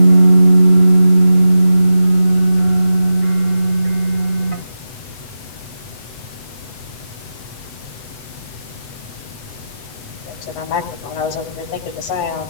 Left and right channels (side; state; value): right; late; 8.0 ms